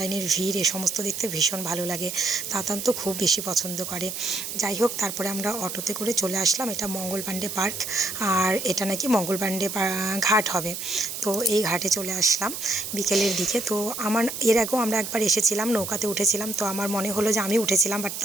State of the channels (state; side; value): noise; right; hiss, 6 dB below the sound